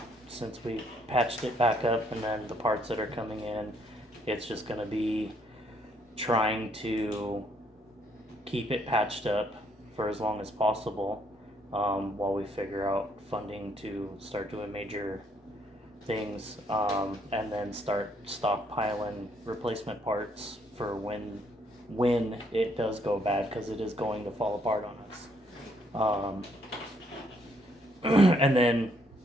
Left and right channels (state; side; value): normal; both; correlation 0.69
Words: since we patched it back up, and then the parts that are coming in, it's just gonna be trying to keep it patched up for as long as possible, while we figure out funding to start doing major things, and then start stockpiling replacement parts for when it does go bad, because it is going to fall apart on us. And then